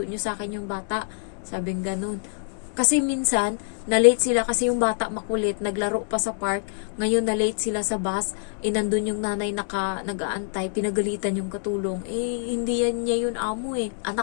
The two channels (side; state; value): right; silent; 61 dB below the other